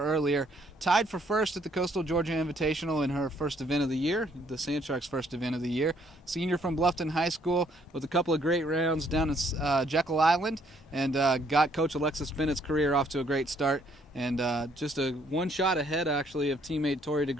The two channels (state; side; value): normal; both; correlation 0.67